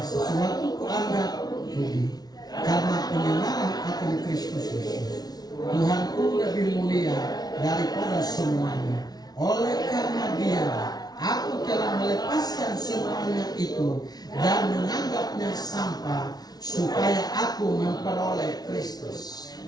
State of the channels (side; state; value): right; late; 0.19 ms